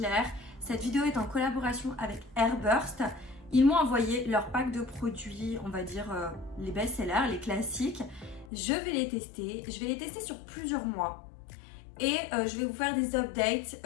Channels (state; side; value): drops out; right; at 8.5 s